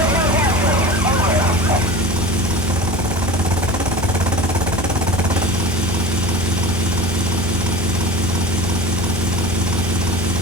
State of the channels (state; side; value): normal; both; correlation 0.34